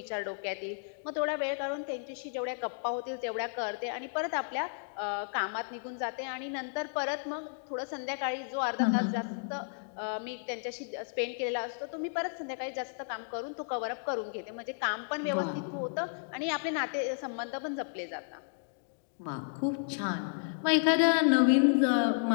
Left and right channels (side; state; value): right; silent; digital silence